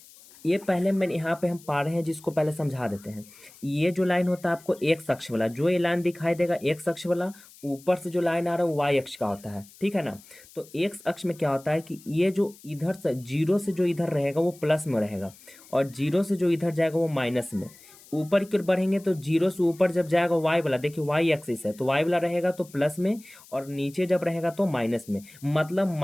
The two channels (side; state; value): left; noise; hiss, 23 dB below the sound